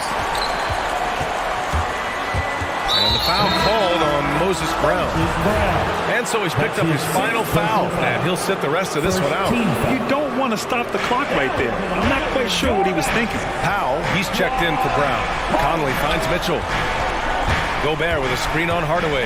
And the foul called on Moses Brown. And so he's picked up his final foul, and he'll sit the rest of this one out. You don't want to stop the clock right there. I'm not quite sure what he was thinking. Powell, he's checked in for Brown. Conley finds Mitchell. Gobert with a screen on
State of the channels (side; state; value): both; identical; correlation 1.00